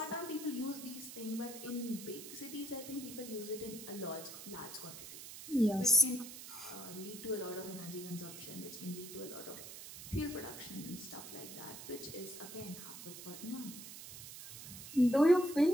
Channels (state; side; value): noise; right; hiss, 12 dB below the sound